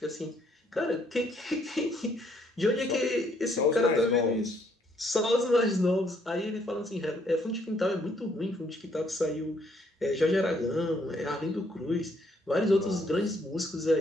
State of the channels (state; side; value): normal; both; correlation 0.68